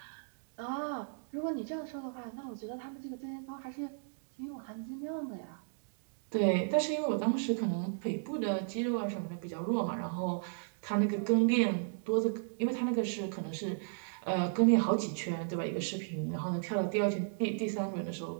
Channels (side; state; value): left; silent; digital silence